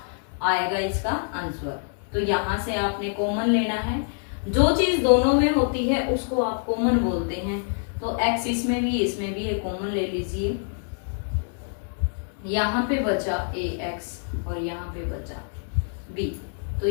आएगा इसका आंसर। तो यहां से आपने कॉमन लेना है। जो चीज दोनों में होती है उसको आप कॉमन बोलते हैं। तो x इसमें भी है, कॉमन ले लीजिए। यहाँ पे बचा ax और यहाँ पे बचा b। तो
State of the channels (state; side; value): silent; right; 61 dB below the other